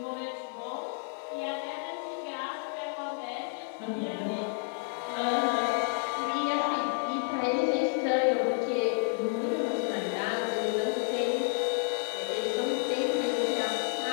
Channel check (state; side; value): silent; right; 55 dB below the other